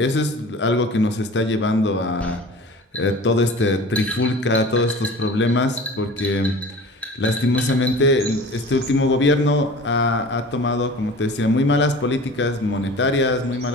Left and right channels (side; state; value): both; normal; correlation 0.40